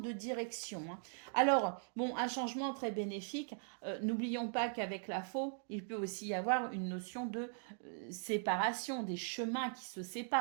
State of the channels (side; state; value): left; silent; 51 dB below the other